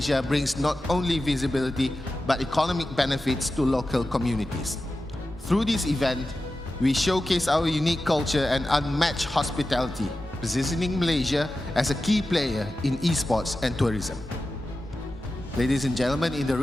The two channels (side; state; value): both; normal; correlation 0.93